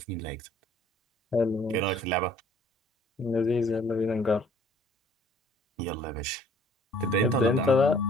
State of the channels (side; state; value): both; normal; correlation 0.56